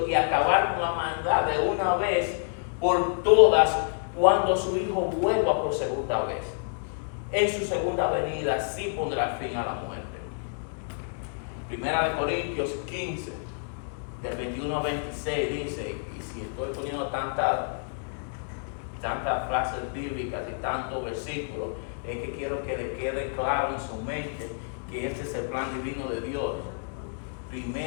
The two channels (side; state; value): right; silent; digital silence